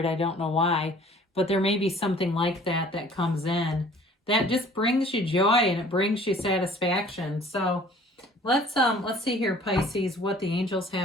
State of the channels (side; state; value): both; normal; correlation 0.52